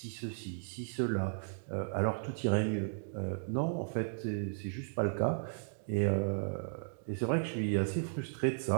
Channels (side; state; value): left; silent; digital silence